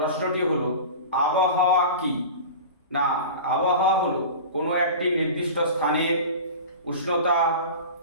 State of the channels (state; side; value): inverted; both; correlation -0.33